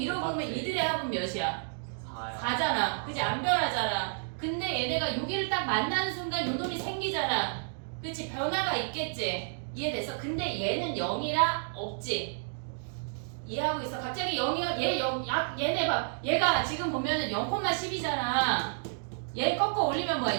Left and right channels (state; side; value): silent; left; digital silence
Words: 합은 몇이야? 4야. 4잖아. 그지? 안 변하잖아. 근데 얘네가 여기를 딱 만나는 순간 요 놈이 생기잖아. 그치? 변화가 있겠지? 이해됐어? 근데 얘는 0이라 없지? 이해하고 있어? 갑자기 0이야? 얘네 봐. 얘가 지금 보면은 0,10이잖아. 얘 꺾어 올리면 뭐야?